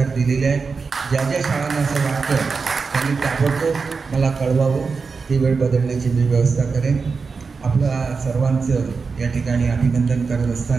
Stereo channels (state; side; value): quieter; left; 4.8 dB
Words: दिलेले आहेत। ज्या ज्या शाळांना असं वाटतं त्यांनी ताबडतोब मला कळवावं, ती वेळ बदलण्याची मी व्यवस्था करेन। आपल्या सर्वांचं या ठिकाणी अभिनंदन करत